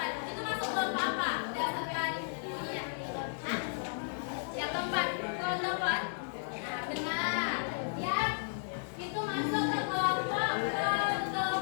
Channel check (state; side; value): silent; right; digital silence